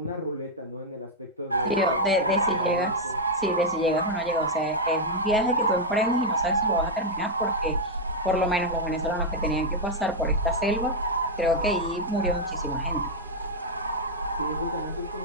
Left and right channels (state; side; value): normal; both; correlation -0.02